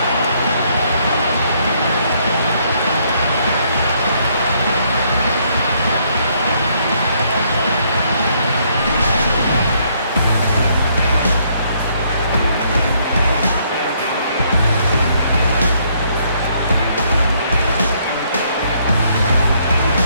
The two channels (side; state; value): both; inverted; correlation -0.69